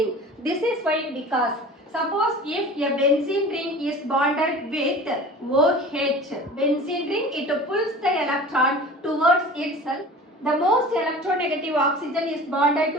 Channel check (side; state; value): both; normal; correlation 0.39